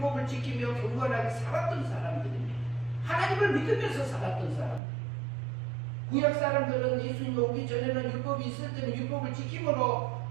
지키며 경건하게 살았던 사람들입니다. 하나님을 믿으면서 살았던 사람들. 구약 사람들은 예수님이 오기 전에는 율법이 있을 때는 율법을 지킴으로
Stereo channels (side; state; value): left; drops out; at 4.8 s